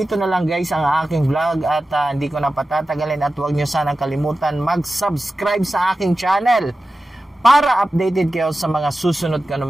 na lang guys ang aking vlog at hindi ko na patatagalin at wag nyo sanang kalimutan mag-subscribe sa aking channel para updated kayo sa mga susunod ko ng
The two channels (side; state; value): both; normal; correlation 0.94